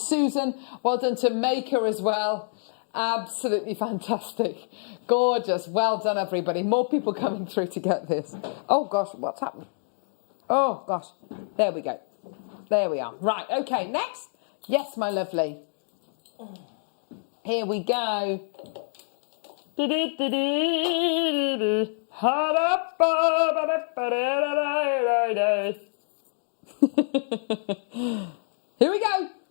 Well done to Maker as well. Absolutely fantastic. Gorgeous. Well done, everybody. More people coming through to get this. Oh, gosh, what's happened? Oh, gosh. There we go. There we are. Right, okay, next. Yes, my lovely. Here we go. Here we go.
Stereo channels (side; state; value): right; silent; digital silence